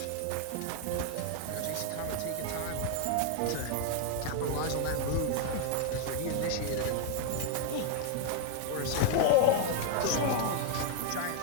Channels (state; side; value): different; both; correlation 0.00